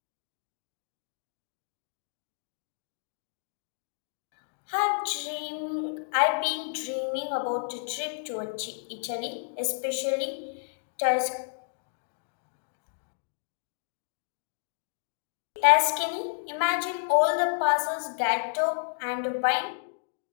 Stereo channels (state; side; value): silent; right; digital silence